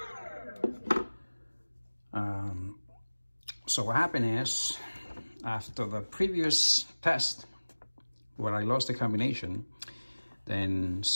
So what happened is, after the previous test where I lost the combination, then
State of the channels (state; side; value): inverted; both; correlation -1.00